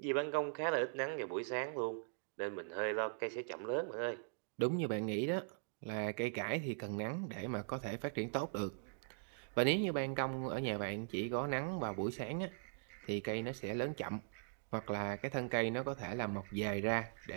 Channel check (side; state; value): left; silent; digital silence